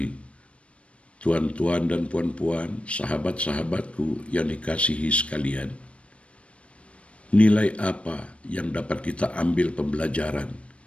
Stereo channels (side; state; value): right; late; 0.062 ms